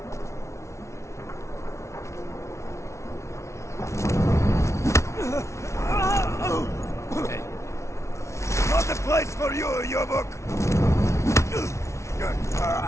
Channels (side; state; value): right; late; 0.13 ms